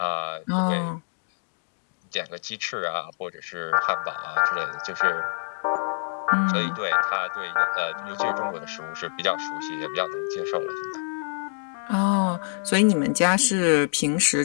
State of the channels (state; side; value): silent; right; digital silence